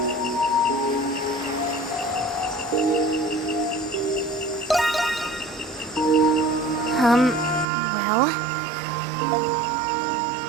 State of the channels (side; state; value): left; drops out; at 7.7 s